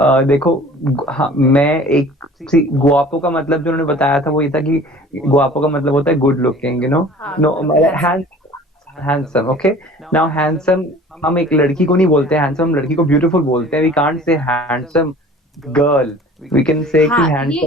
देखो हाँ, मैं एक गुआपो का मतलब जो उन्होंने बताया था वो ये था कि गुआपो का मतलब होता है गुड लुकिंग, हाँ, no handsome. Handsome. Okay, now handsome हम एक लड़की को नहीं बोलते हैंडसम, हम लड़की को ब्यूटीफुल बोलते हैं। We can't say handsome girl, we can say कि हाँ,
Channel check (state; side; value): normal; both; correlation 0.46